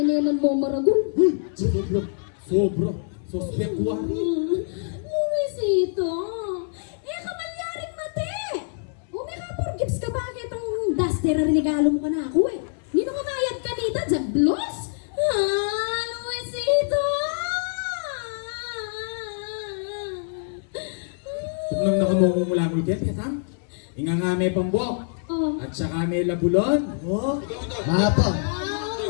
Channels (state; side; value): silent; right; digital silence